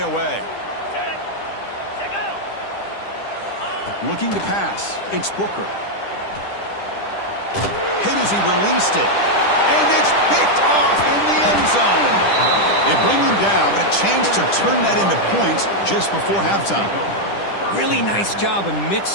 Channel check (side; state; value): right; late; 10 ms